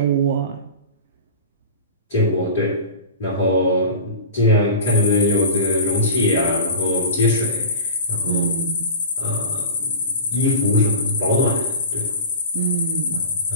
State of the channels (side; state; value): both; inverted; correlation -0.33